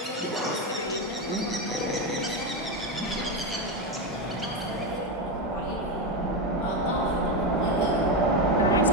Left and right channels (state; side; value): normal; both; correlation 0.10